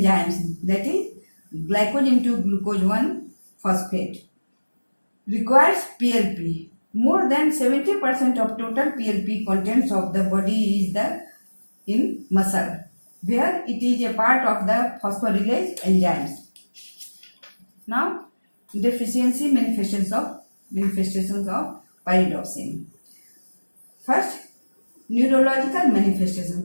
that is glycogen to glucose 1 phosphate, requires PLP. More than 70% of total PLP contents of the body is in muscle, where it is a part of the phosphorylase enzymes. Now, deficiency manifestations of pyridoxine. First, neurological manifestations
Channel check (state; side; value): inverted; both; correlation -1.00